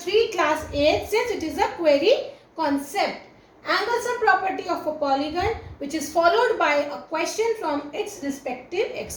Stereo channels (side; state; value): both; identical; correlation 1.00